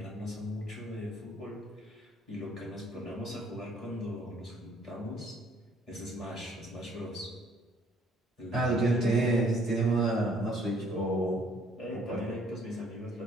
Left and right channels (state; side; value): normal; both; correlation 0.62